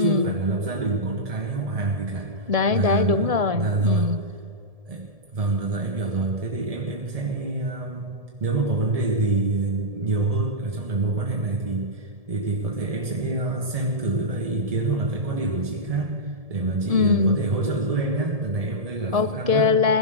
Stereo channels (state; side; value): late; left; 1.7 ms